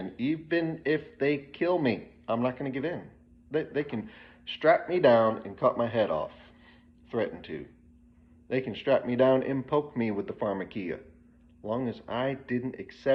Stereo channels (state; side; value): identical; both; correlation 1.00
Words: Even if they kill me, I'm not going to give in. They can strap me down and cut my head off. Threaten to. They can strap me down and poke me with the Pharmakeia. As long as I didn't